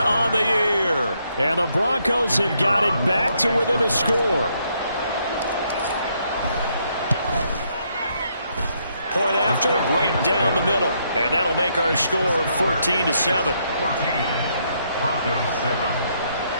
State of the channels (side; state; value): both; inverted; correlation -0.74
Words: on the year. And the Broncos have got it back to within a score. Point after, right down the middle. And that'll make our score 14-7.